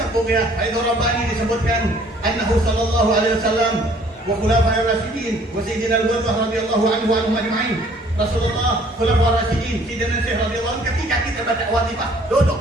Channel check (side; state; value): both; normal; correlation 0.58